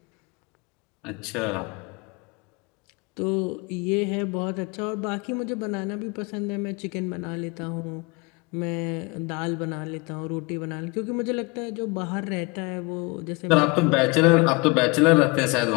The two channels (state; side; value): quieter; right; 27.3 dB